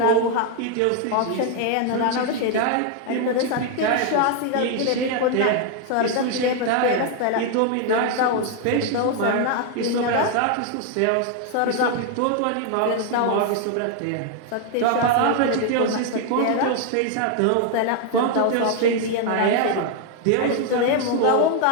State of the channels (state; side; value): different; both; correlation 0.00